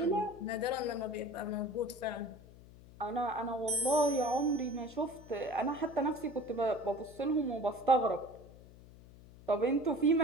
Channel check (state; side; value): noise; left; hum, 20 dB below the sound